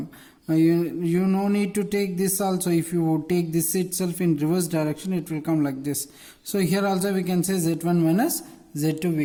You no need to take this also. If you take this itself in reverse direction, it will come like this. So here also we can say Z1 minus Z2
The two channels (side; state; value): both; identical; correlation 1.00